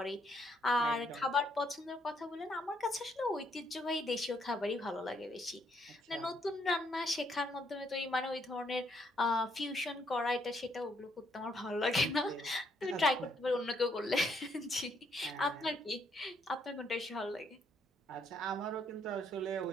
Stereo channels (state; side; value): normal; both; correlation 0.72